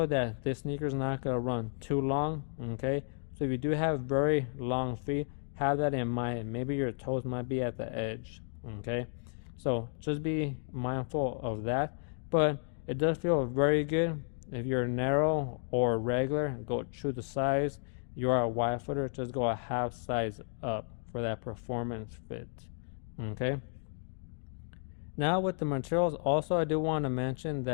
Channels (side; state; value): right; silent; 56 dB below the other